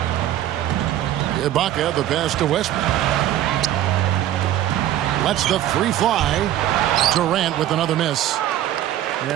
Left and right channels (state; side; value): quieter; left; 12.4 dB